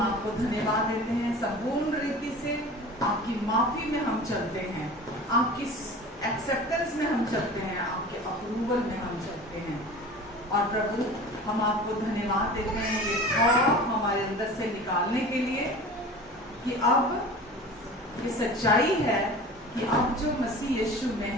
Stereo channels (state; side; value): normal; both; correlation 0.38